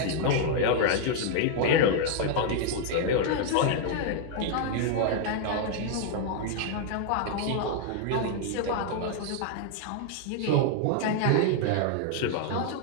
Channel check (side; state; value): both; different; correlation 0.00